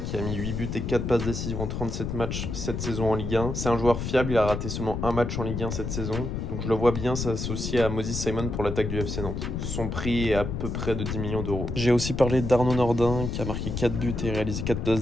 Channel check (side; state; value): left; noise; rumble, 3 dB below the sound